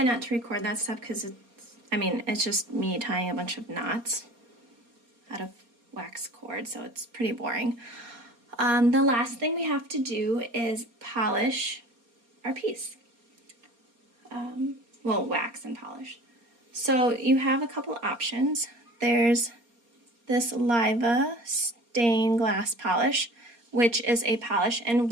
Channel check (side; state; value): left; late; 4.3 ms